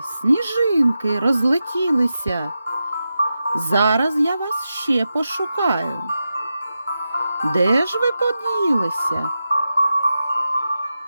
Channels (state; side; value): inverted; both; correlation -0.91